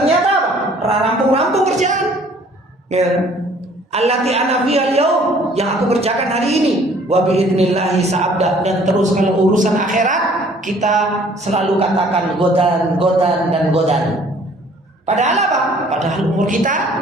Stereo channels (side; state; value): both; normal; correlation 0.56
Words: apa? Rampung-rampung kerjaan. Ya. Allati ana fiha al-yaum, yang aku kerjakan hari ini. Wa biidznillah sa'abda. Dan terus kalau urusan akhirat kita selalu katakan godan. Padahal apa? Padahal umur kita